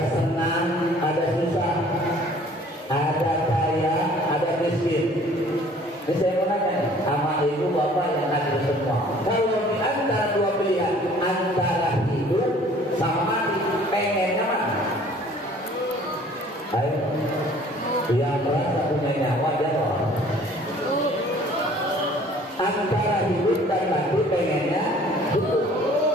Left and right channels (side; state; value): both; normal; correlation 0.53